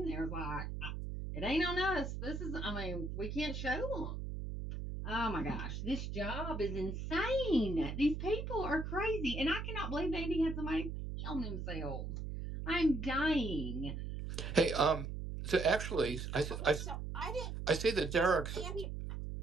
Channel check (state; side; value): noise; right; hum, 5 dB below the sound